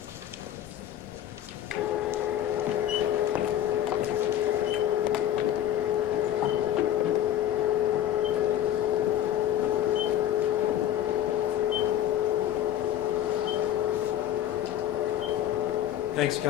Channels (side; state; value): right; quieter; 11.4 dB